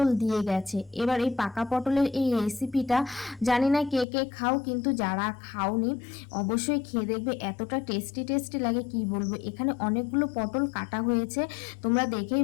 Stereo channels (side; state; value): right; drops out; at 4.0 s